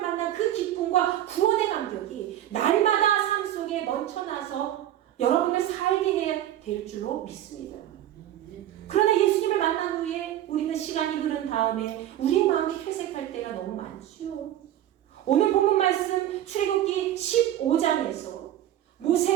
그 기쁨과 구원의 감격이 날마다 삶 속에 넘쳐나서 여러분을 살게 해야 될 줄로 믿습니다. 그러나 예수님을 만난 후에 우리는 시간이 흐른 다음에 우리의 마음이 퇴색할 때가 너무 많지요. 오늘 본문 말씀 출애굽기 15장에서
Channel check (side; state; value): left; quieter; 12.3 dB